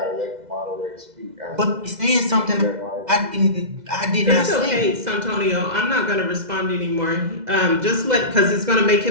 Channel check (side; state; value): left; late; 2.0 ms